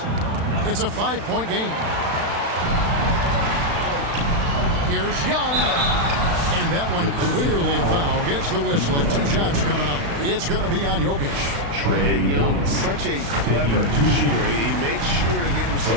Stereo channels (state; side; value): late; left; 35 ms